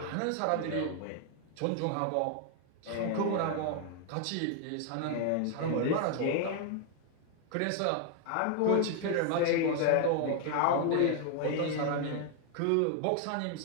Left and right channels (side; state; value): both; different; correlation 0.00